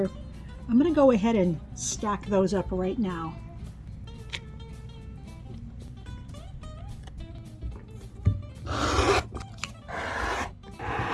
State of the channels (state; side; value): identical; both; correlation 1.00